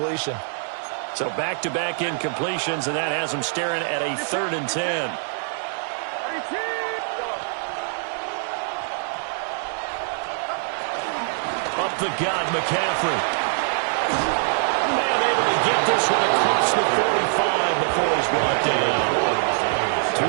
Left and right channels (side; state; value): left; silent; digital silence